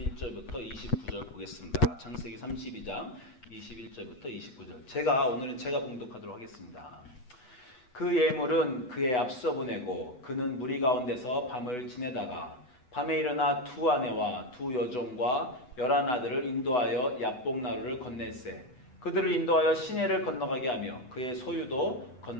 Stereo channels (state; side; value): late; right; 8.1 ms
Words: 29절 보겠습니다. 창세기 32장 21절부터 29절. 오늘은 제가 봉독하도록 하겠습니다. 그 예물은 그의 앞서 보내고 그는 무리 가운데서 밤을 지내다가 밤에 일어나 두 아내와 두 여종과 11아들을 인도하여 야복나루를 건넬세 그들을 인도하여 시내를 건너가게 하며 그의 소유도